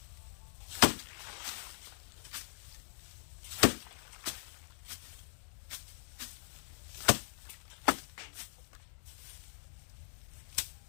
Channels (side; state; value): right; silent; digital silence